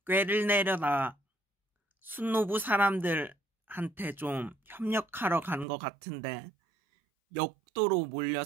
꾀를 내려다 순노부 사람들한테 좀 협력하러 간 것 같은데 역도로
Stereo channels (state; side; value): drops out; left; at 5.7 s